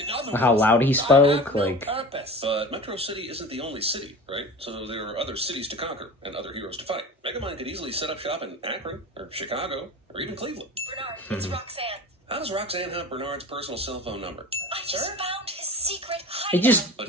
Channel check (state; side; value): normal; both; correlation 0.35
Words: other How words, loud he I spoke, have no like... purpose. But Metro City isn't the only city, right? So there are other cities to conquer and other heroes to fight. Megamind could easily set up shop in Akron, or Chicago, or even Cleveland. Bernard, it's Roxanne. How does Roxanne have Bernard's personal cell phone number? I just found his secret They hideout. just...